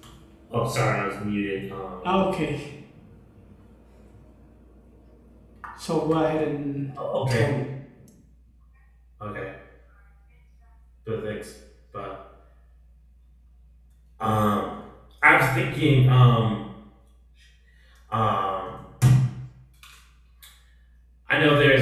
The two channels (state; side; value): identical; both; correlation 1.00